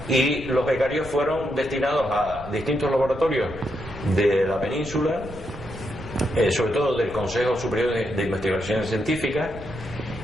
y los becarios fueron destinados a distintos laboratorios de la península, sobre todo del Consejo Superior de Investigaciones Científicas,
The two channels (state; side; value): noise; right; rumble, 15 dB below the sound